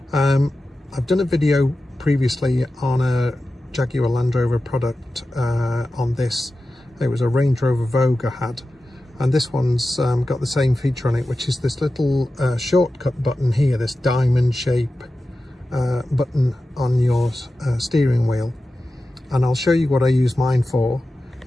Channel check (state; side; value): normal; both; correlation 0.93